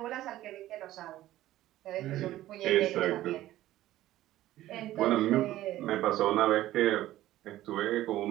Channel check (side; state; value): left; quieter; 14.7 dB